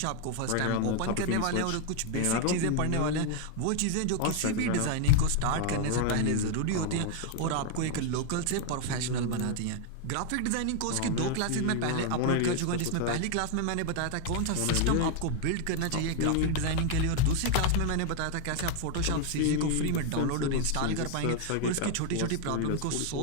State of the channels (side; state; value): both; different; correlation 0.00